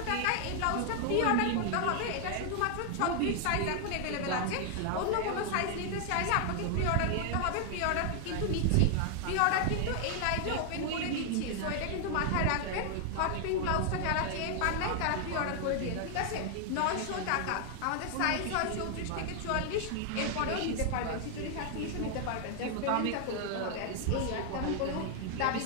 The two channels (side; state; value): both; different; correlation 0.00